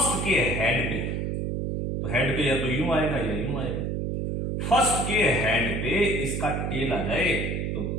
के हेड पे, तो हेड पे या तो यूं आएगा या यूं आएगा। फर्स्ट के हेड पे इसका टेल आ जाए तो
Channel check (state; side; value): noise; right; hum, 1 dB below the sound